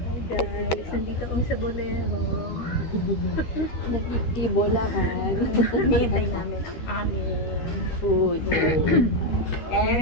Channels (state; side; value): late; right; 13 ms